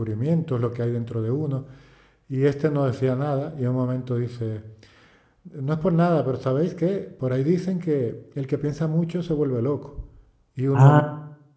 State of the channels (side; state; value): both; identical; correlation 1.00